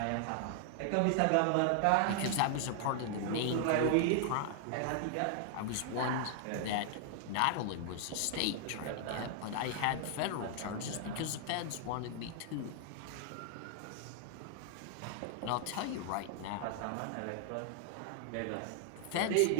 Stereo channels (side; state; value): both; different; correlation 0.00